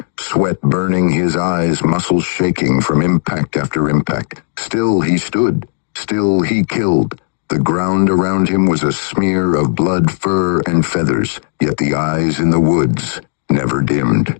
sweat burning his eyes, muscles shaking from impact after impact. Still he stood. Still he killed. The ground around him was a smear of blood, fur, and feathers, yet the eyes in the woods never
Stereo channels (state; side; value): silent; right; digital silence